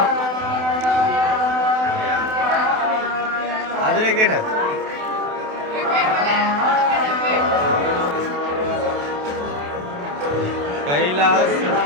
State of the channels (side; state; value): left; late; 28 ms